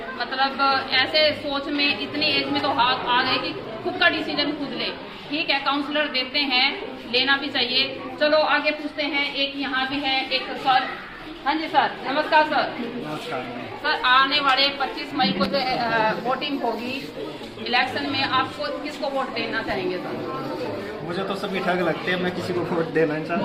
मतलब ऐसे सोच में इतनी एज में तो आ गए कि खुद का डिसीजन खुद ले। ठीक है, काउंसलर देते हैं, लेना भी चाहिए। चलो आगे पूछते हैं, एक यहाँ भी है एक सर। हाँ जी सर, नमस्कार सर। नमस्कार सर, आने वाले 25 मई को जो वोटिंग होगी इलेक्शन में, आपको किसको वोट देना चाहेंगे सर? मुझे तो सभी ठग लगते हैं, मैं किसी को वोट देना नहीं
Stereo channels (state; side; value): identical; both; correlation 1.00